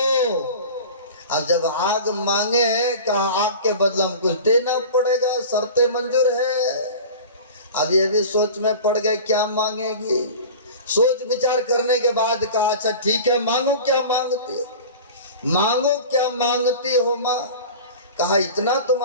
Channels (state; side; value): inverted; both; correlation -0.36